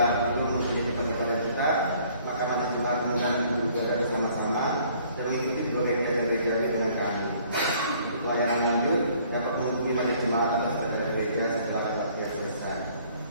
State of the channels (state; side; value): inverted; both; correlation -0.59